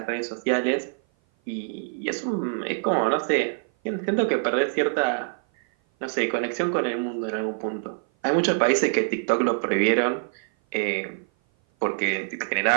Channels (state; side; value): silent; left; 56 dB below the other